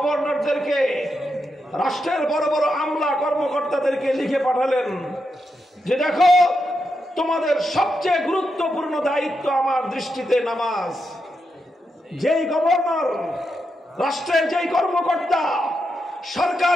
রাষ্ট্রের বড় বড় আমলা কর্মকর্তাদেরকে লিখে পাঠালেন যে দেখো, তোমাদের সবচেয়ে গুরুত্বপূর্ণ দায়িত্ব আমার দৃষ্টিতে নামাজ। যেই গভর্নর, রাষ্ট্রের যেই কর্মকর্তা,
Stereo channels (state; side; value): normal; both; correlation 0.85